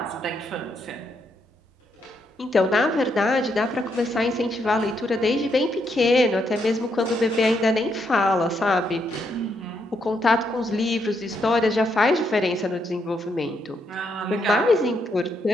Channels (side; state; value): both; normal; correlation 0.77